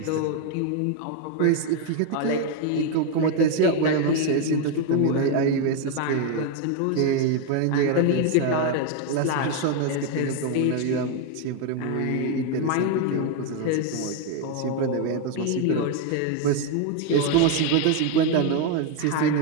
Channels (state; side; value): different; both; correlation 0.01